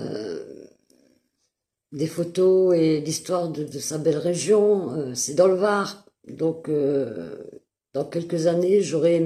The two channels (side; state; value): both; identical; correlation 1.00